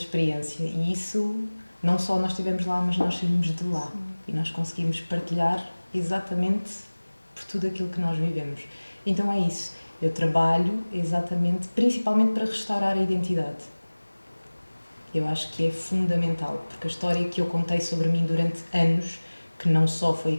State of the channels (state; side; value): inverted; both; correlation -1.00